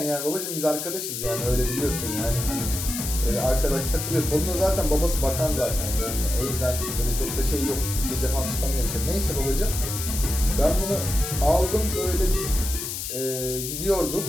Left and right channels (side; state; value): left; noise; hiss, 5 dB below the sound